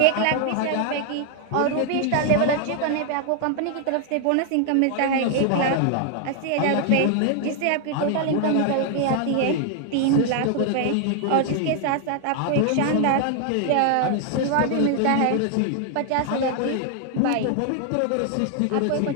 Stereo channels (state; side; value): different; both; correlation 0.00